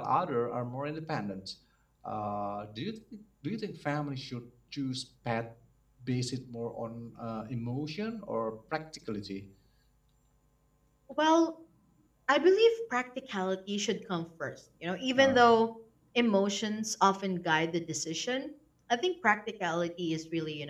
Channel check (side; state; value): both; identical; correlation 1.00